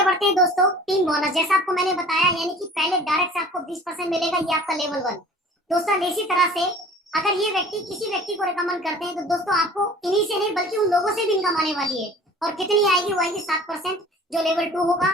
बढ़ते हैं दोस्तों, टीम बोनस, जैसा आपको मैंने बताया, यानी कि पहले डायरेक्ट से आपको 20% मिलेगा, ये आपका लेवल 1। दोस्तों इसी तरह से अगर ये व्यक्ति किसी व्यक्ति को रिकमेंड करते हैं तो दोस्तों आपको इन्हीं से नहीं बल्कि उन लोगों से भी इनकम आने वाली है। और कितनी आएगी, वो आएगी 7%, जो लेवल 2 होगा।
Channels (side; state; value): both; normal; correlation 0.46